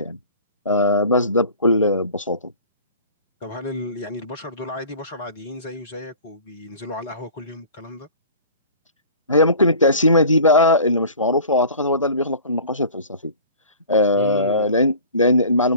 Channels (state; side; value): inverted; both; correlation -0.43